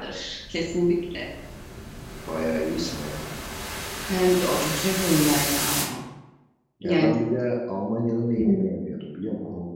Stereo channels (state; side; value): identical; both; correlation 1.00